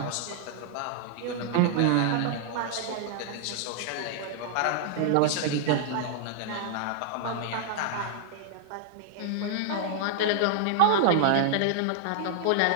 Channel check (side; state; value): both; different; correlation -0.01